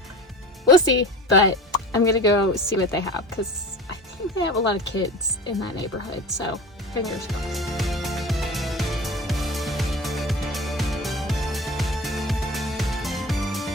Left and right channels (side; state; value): both; normal; correlation 0.35